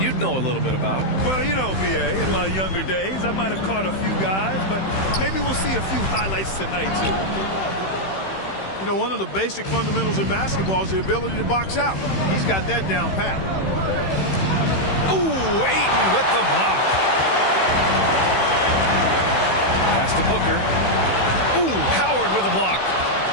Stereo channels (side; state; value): right; late; 16 ms